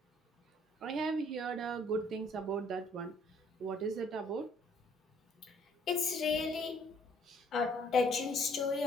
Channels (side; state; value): both; normal; correlation 0.62